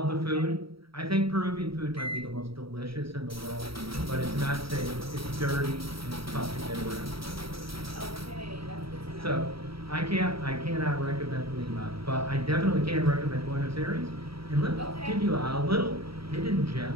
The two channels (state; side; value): late; left; 0.75 ms